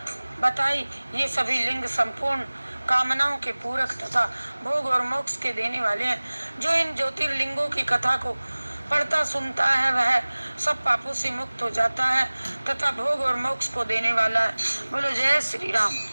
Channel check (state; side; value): inverted; both; correlation -1.00